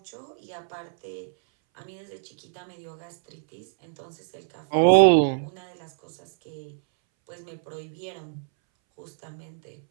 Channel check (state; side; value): silent; left; 60 dB below the other